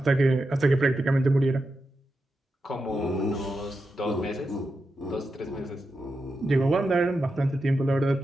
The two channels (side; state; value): both; normal; correlation 0.88